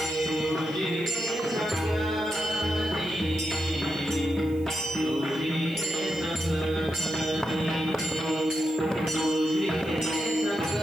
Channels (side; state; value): right; noise; hiss, 26 dB below the sound